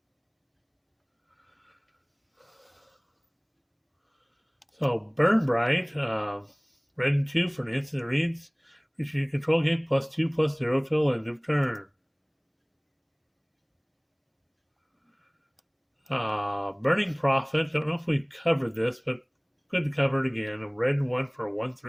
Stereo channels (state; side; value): identical; both; correlation 1.00